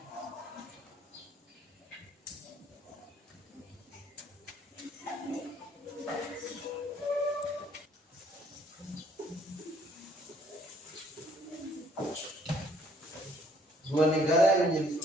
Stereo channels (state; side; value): normal; both; correlation 0.63